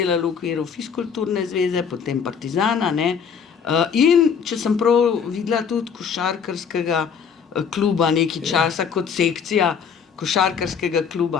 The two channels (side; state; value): right; quieter; 6.8 dB